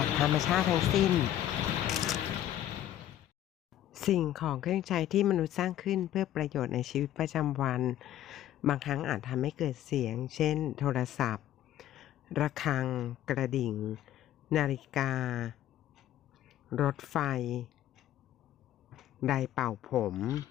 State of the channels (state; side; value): quieter; right; 12.4 dB